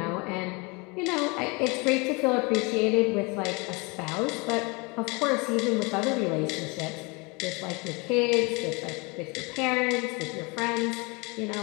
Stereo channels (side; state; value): right; quieter; 28.1 dB